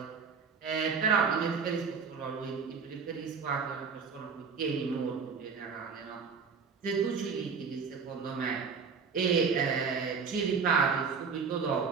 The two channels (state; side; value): quieter; left; 5.6 dB